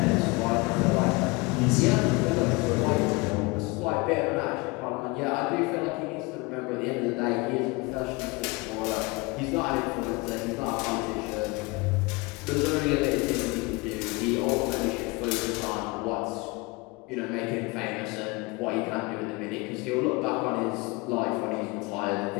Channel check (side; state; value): right; quieter; 25.3 dB